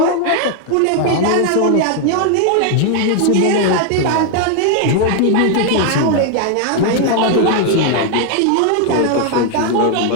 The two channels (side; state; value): both; different; correlation 0.01